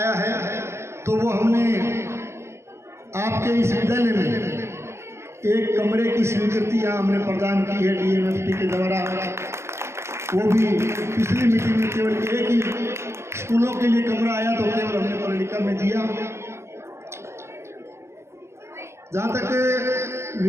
है तो वो हमने आपके इस विद्यालय में एक कमरे की स्वीकृति यहाँ हमने प्रदान की है DMFT के द्वारा। वो भी पिछली मीटिंग में केवल एक ही स्कूलों के लिए कमरा आया तो केवल हमने पर्णिका में दिया। जहाँ तक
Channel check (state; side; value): late; left; 0.13 ms